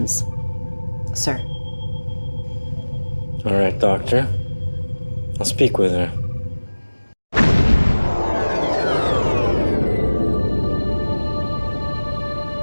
sir. All right, Doctor. I'll speak with her.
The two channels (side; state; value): both; inverted; correlation -1.00